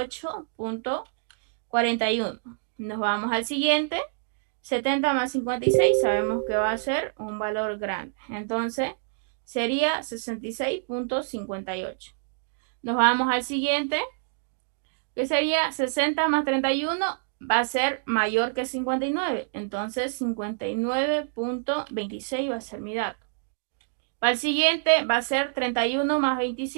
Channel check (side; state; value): left; silent; digital silence